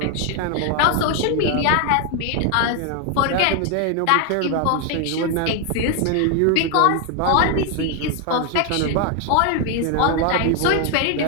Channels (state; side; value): different; both; correlation 0.01